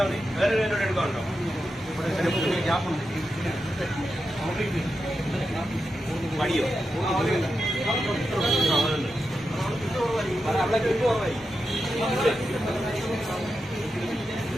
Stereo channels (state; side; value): normal; both; correlation 0.88